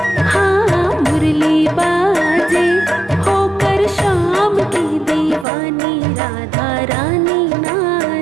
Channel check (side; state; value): left; drops out; at 5.5 s